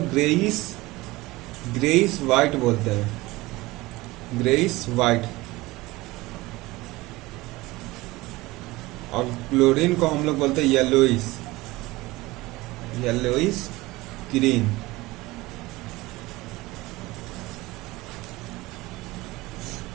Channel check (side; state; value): left; quieter; 20.3 dB